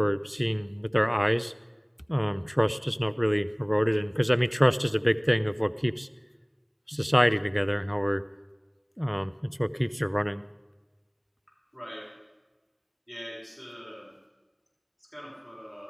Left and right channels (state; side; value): identical; both; correlation 1.00